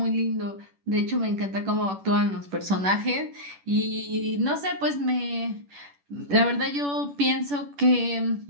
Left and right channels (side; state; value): left; late; 10 ms